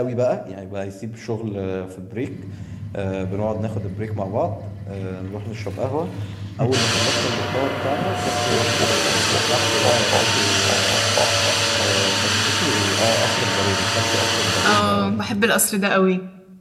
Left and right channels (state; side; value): identical; both; correlation 1.00